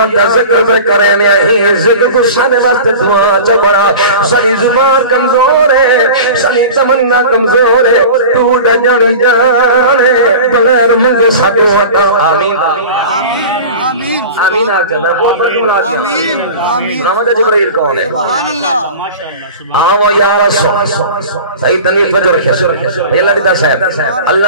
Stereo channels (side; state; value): both; inverted; correlation -0.35